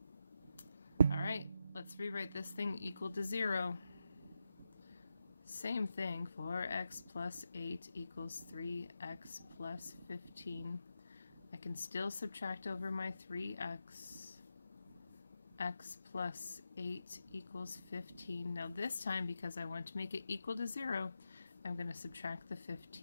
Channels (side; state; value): both; inverted; correlation -0.88